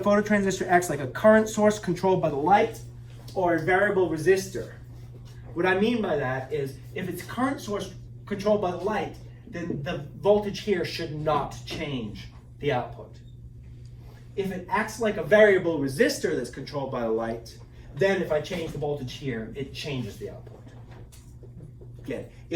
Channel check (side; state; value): both; identical; correlation 1.00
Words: phototransistor acts like a current source controlled by the light or a variable resistor. What I mean by that is, if it's current source controlled by the light, then the voltage here should not change the output. If it acts like a variable resistor that's controlled by the light, then if I change the voltage here, it changes the output. Again,